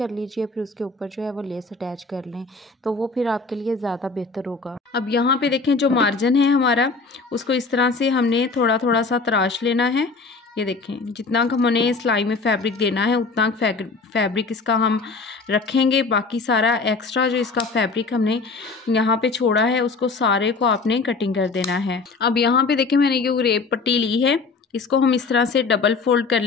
लीजिए, फिर उसके ऊपर जो है वो लेस अटैच कर लें तो वो फिर आपके लिए ज़्यादा बेहतर होगा। अब यहाँ पे देखें जो मार्जिन है हमारा उसको इस तरह से हमने थोड़ा थोड़ा सा तराश लेना है। ये देखें जितना हमने सिलाई में फैब्रिक देना है उतना फैब्रिक इसका हम रखेंगे। बाकी सारा एक्स्ट्रा जो इसका फैब्रिक हमने यहाँ पे छोड़ा है उसको सारे को आपने कटिंग कर देना है। अब यहाँ पे देखें मैंने ये रेप पट्टी ली है, इसको हम इस तरह से डबल फोल्ड कर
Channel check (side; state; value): right; quieter; 4.2 dB